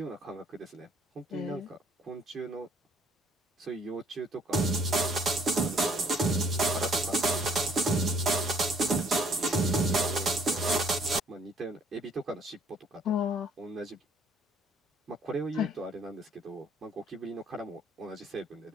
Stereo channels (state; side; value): normal; both; correlation 0.61